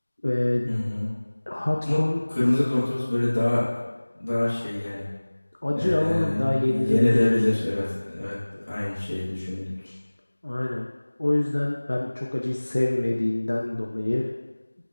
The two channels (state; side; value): inverted; both; correlation -1.00